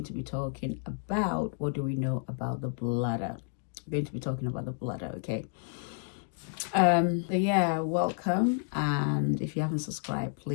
to be talking about what do we know about the bladder. We're going to be talking about the bladder, okay? So yeah, welcome, and if you haven't subscribed,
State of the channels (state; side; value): silent; right; 57 dB below the other